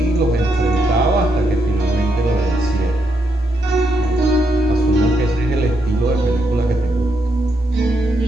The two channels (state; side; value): normal; both; correlation 0.80